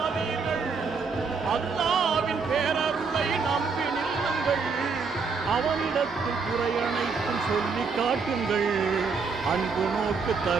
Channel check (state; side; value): quieter; left; 5.0 dB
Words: அல்லாவின் பேரருளை நம்பி நில்லுங்கள், அவனிடத்தில் குறையனைத்தும் சொல்லி காட்டுங்கள், அன்பு நோக்கு